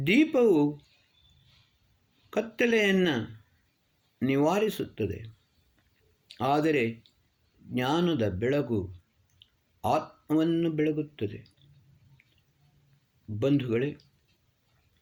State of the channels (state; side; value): identical; both; correlation 1.00